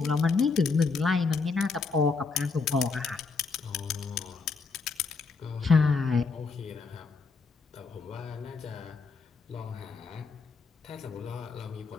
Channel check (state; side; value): quieter; right; 4.5 dB